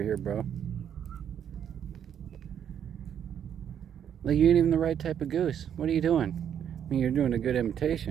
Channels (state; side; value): quieter; left; 9.0 dB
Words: here, bro. Like, you ain't even the right type of goose. What are you doing? I mean, you're doing a good